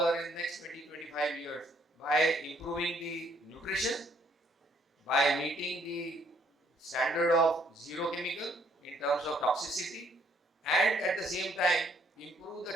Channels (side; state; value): both; normal; correlation 0.66